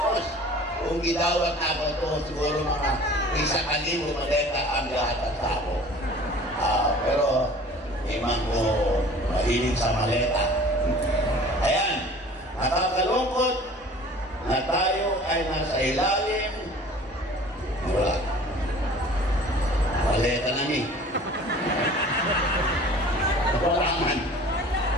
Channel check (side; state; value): both; normal; correlation 0.46